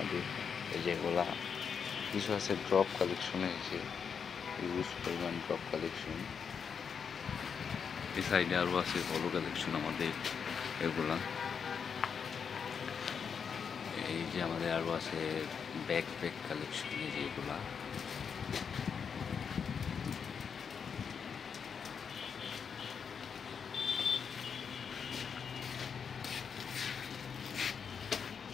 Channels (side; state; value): right; quieter; 6.6 dB